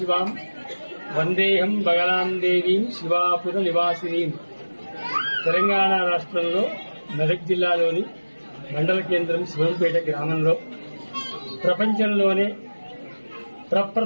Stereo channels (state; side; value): inverted; both; correlation -1.00